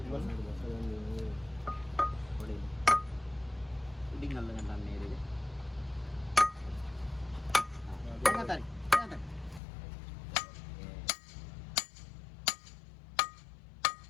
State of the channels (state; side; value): drops out; right; at 9.6 s